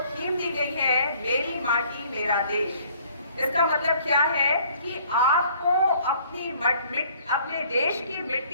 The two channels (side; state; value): both; inverted; correlation -0.58